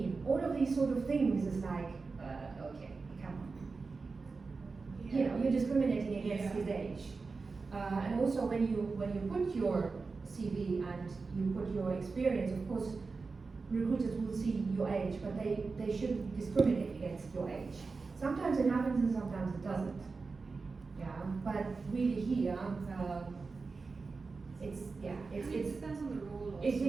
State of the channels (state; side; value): quieter; left; 4.3 dB